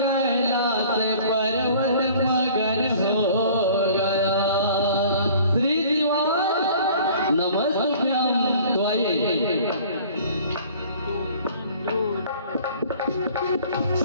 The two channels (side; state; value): both; inverted; correlation -0.50